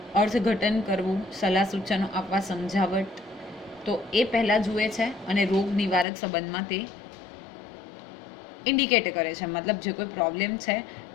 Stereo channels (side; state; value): right; drops out; at 6.1 s